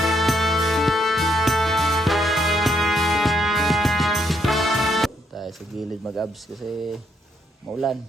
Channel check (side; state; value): both; normal; correlation 0.74